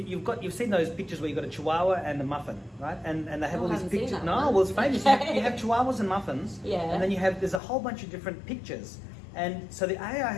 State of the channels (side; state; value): right; drops out; at 7.6 s